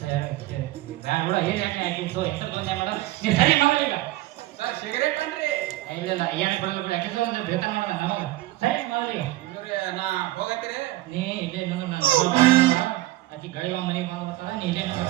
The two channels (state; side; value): quieter; left; 17.3 dB